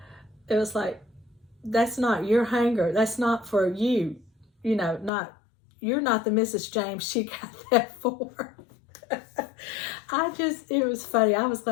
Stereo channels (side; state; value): right; drops out; at 5.1 s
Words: It was like, that's not your hanger. That's not for you. You're not the Mrs. James she got that for. It was funny. I was